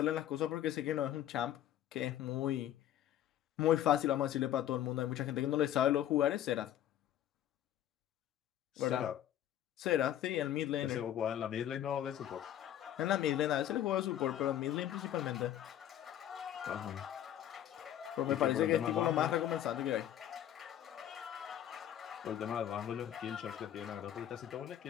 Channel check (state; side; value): quieter; right; 11.5 dB